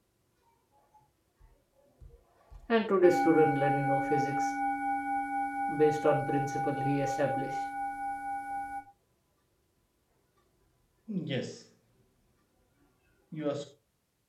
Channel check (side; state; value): both; identical; correlation 1.00